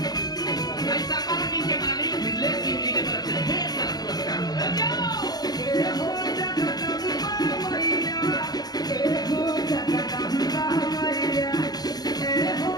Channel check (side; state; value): right; late; 0.19 ms